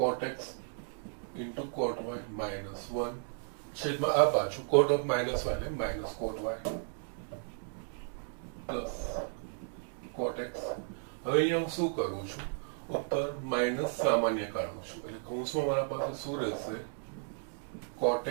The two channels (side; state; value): left; silent; digital silence